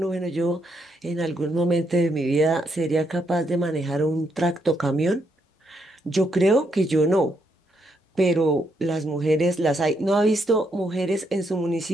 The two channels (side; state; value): both; normal; correlation 0.77